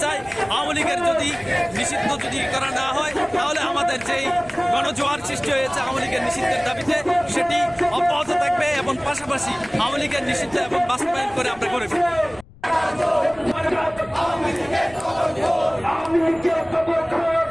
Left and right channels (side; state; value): left; noise; rumble, 24 dB below the sound